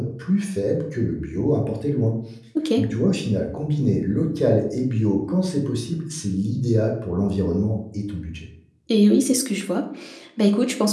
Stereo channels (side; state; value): both; identical; correlation 1.00